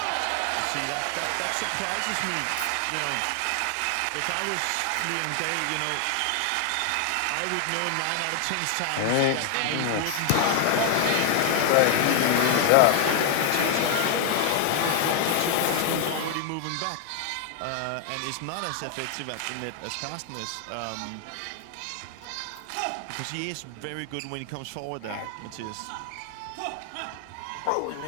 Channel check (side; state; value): both; different; correlation 0.00